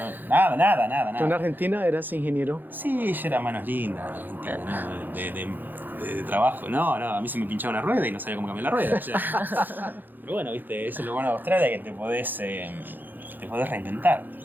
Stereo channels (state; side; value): late; left; 0.088 ms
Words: ¿Tú en Argentina eras ingeniero? Sí, yo era manos lindas en Argentina, ¿no? De trabajo, no, a mí se me pinchaba una rueda y no sabía cómo cambiar la rueda. O sea. Pero bueno, viste, eso es lo bueno de Australia, que te podés reinventar.